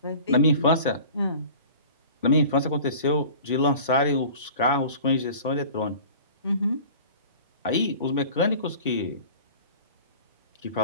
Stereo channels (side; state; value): both; inverted; correlation -0.42